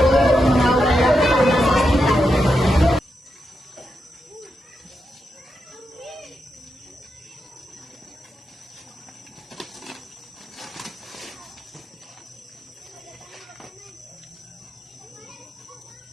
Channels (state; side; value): normal; both; correlation 0.86